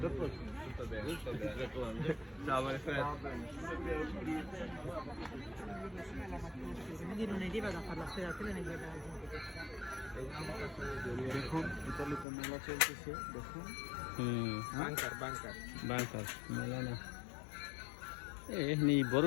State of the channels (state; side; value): drops out; right; at 12.2 s